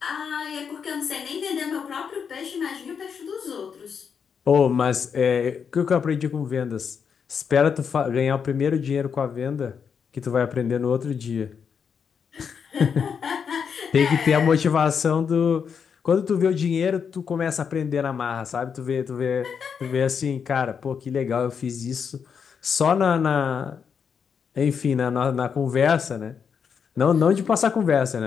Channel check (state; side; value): quieter; right; 6.7 dB